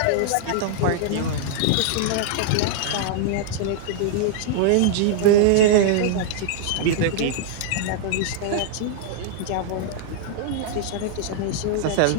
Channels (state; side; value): different; both; correlation -0.01